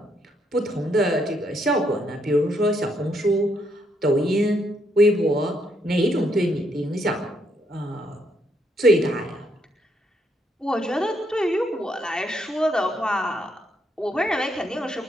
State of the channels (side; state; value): both; normal; correlation 0.75